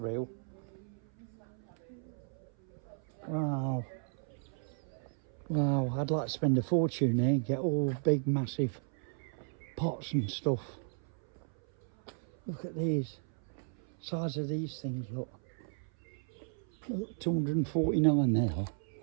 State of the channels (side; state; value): left; silent; 55 dB below the other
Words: Wow. Wow, I'd like to spend a fortune here and get all big, massive pots and stuff. Look at these. Size of these things, look. Look, 249 there.